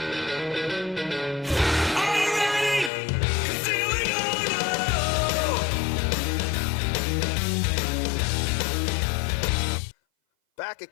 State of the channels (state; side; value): drops out; right; at 2.9 s